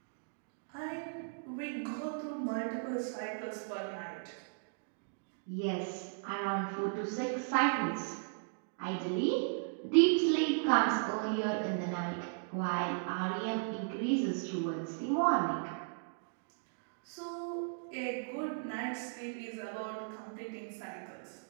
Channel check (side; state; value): left; silent; digital silence